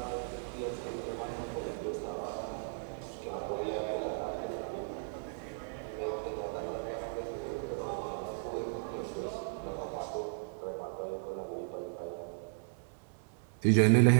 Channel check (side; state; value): left; silent; digital silence